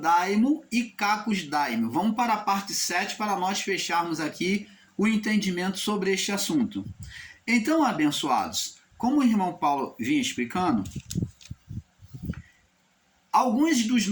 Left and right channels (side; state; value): both; identical; correlation 1.00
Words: e Cacos Daimo. Vamos para a parte 7 para nós fecharmos aqui o entendimento sobre este assunto. Então, abençoados, como o irmão Paulo vinha explicando, alguns dos